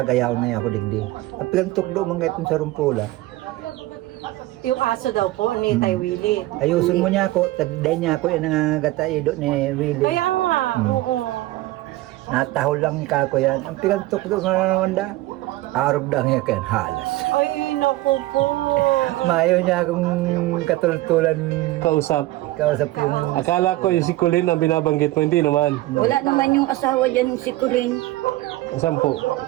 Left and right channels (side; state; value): left; quieter; 17.7 dB